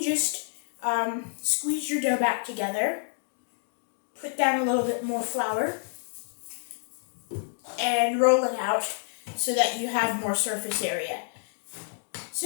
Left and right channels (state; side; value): silent; right; digital silence